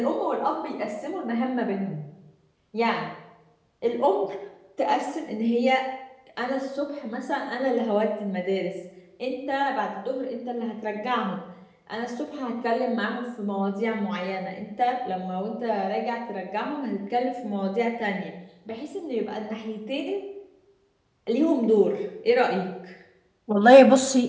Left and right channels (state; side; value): identical; both; correlation 1.00